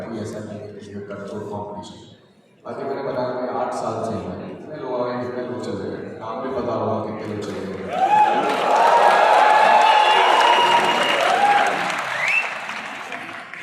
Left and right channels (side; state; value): both; identical; correlation 1.00